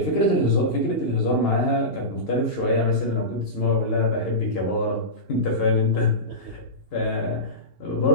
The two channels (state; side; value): late; right; 2.8 ms